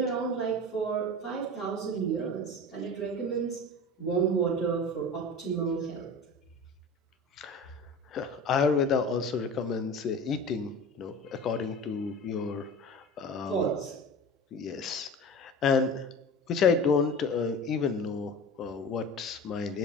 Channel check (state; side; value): normal; both; correlation 0.34